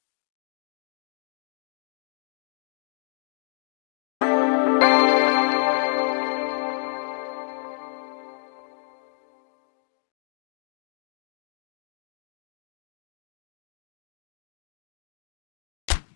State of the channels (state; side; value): silent; right; digital silence